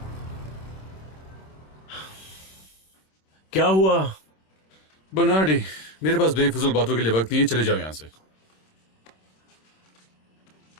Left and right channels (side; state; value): right; late; 26 ms